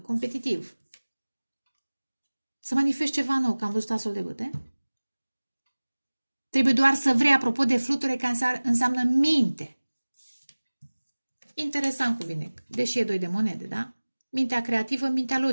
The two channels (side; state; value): both; inverted; correlation -1.00